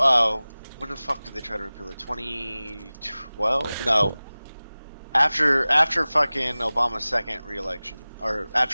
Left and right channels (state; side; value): inverted; both; correlation -0.98